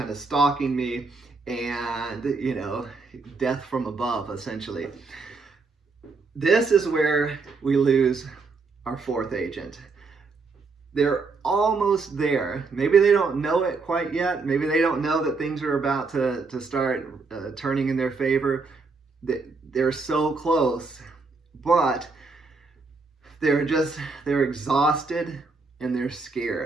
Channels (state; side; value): quieter; left; 4.2 dB